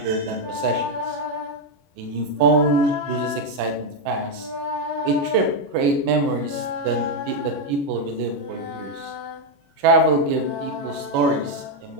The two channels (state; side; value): late; left; 21 ms